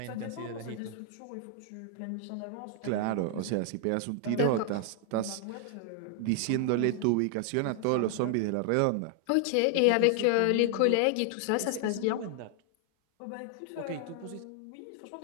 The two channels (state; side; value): different; both; correlation 0.00